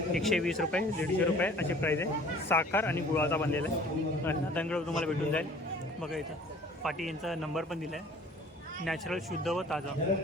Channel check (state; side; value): normal; both; correlation 0.50